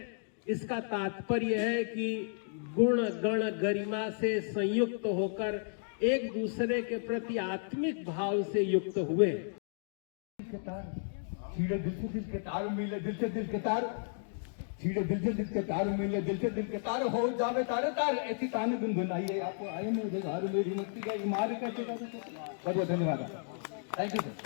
इसका तात्पर्य है कि गुण गण गरिमा से संयुक्त होकर एक दूसरे के प्रति आत्मिक भाव से युक्त हुए। छीड़े दिल से दिल के तार मिले, दिल से दिल के तार, छीड़े दिल से दिल के तार मिले, दिल से दिल के तार हो जावे तारे तार, ऐसी ताने गुनगुनाइए। आपको आए में घर मेरी मुक्ति का इमार कैसे कर सकते। बहुत बहुत धन्यवाद, थैंक यू सर।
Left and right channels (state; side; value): silent; right; digital silence